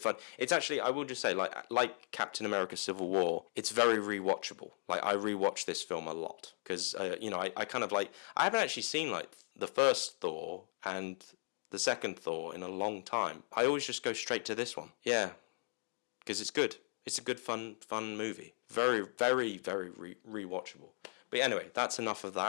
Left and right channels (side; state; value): right; silent; digital silence